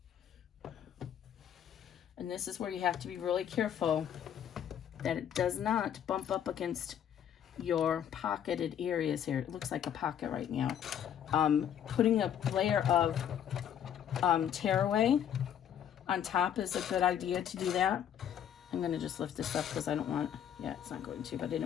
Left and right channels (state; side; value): quieter; right; 9.5 dB